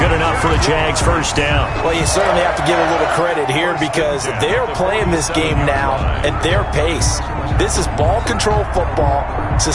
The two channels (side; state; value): both; identical; correlation 1.00